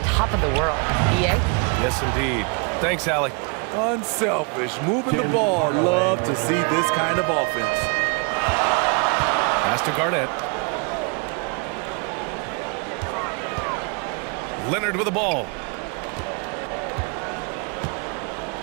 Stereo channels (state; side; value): quieter; left; 34.1 dB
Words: top of the world. EA? Yes, indeed. Thanks, Allie. Unselfish, moving the ball. Love to see this kind of offense. Pass to Garnett. Leonard with the ball.